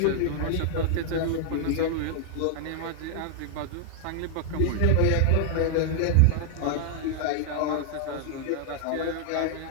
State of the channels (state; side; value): different; both; correlation 0.00